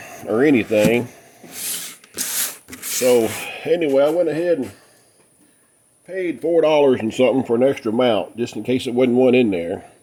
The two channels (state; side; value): identical; both; correlation 1.00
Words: or anything. So anyway, I went ahead and paid $4 and something for an extra mount, just in case there wasn't one in there.